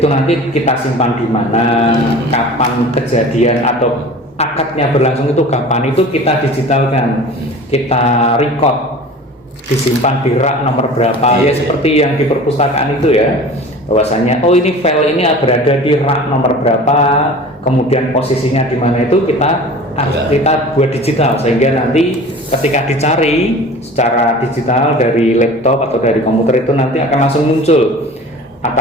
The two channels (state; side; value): normal; both; correlation 0.40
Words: nanti kita simpan di mana, kapan kejadian atau akadnya berlangsung itu kapan, itu kita digitalkan, kita record, disimpan di rak nomor berapa ya, seperti yang di perpustakaan itu ya, bahwasanya ini file ini berada di rak nomor berapa, kemudian posisinya di mana, itu kita buat digital sehingga nanti ketika dicari secara digital dari laptop atau dari komputer itu nanti akan langsung muncul